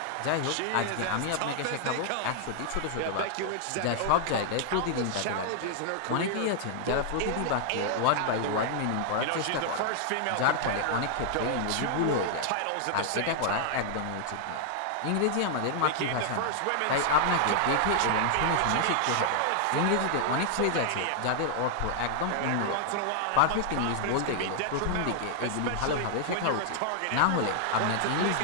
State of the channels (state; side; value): different; both; correlation -0.01